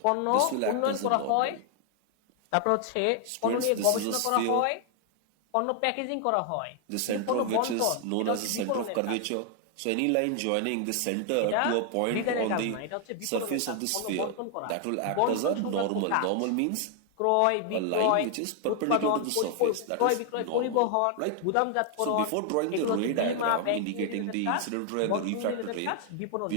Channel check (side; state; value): both; different; correlation 0.00